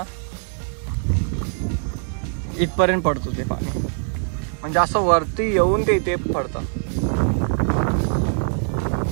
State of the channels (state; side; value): silent; left; 62 dB below the other